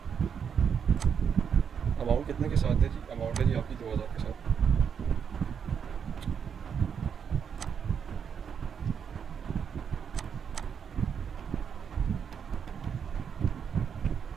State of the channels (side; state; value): left; quieter; 7.2 dB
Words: अमाउंट कितने के साथ है जी, अमाउंट है जी आपकी 2,000 के साथ।